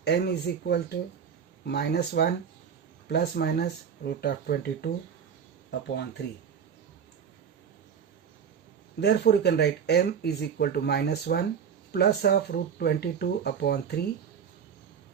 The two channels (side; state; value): left; quieter; 7.4 dB